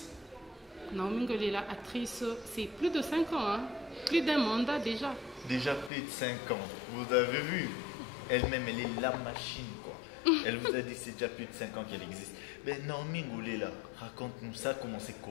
Naomi Ngolela, actrice, c'est plus de 5 ans. Hein. Plus d'un mandat déjà. Déjà plus de 5 ans. Vous avez vu? Elle-même, elle est la machine, quoi. Elle vous a dit que c'est déjà plus de 5 ans qu'elle existe. Mais Naomi Ngolela, raconte-nous ça, comment?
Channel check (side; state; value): right; drops out; at 5.9 s